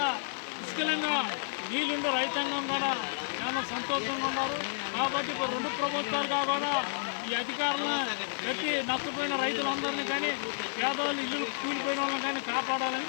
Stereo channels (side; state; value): right; silent; digital silence